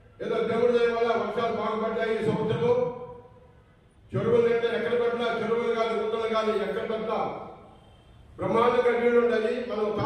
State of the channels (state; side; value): identical; both; correlation 1.00